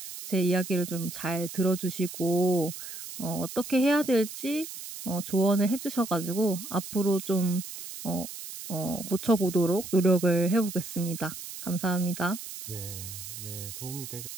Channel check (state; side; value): noise; right; hiss, 10 dB below the sound